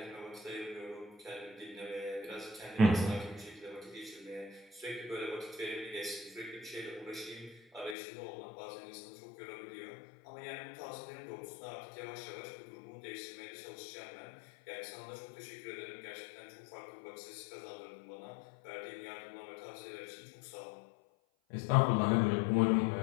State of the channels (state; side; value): drops out; right; at 8.0 s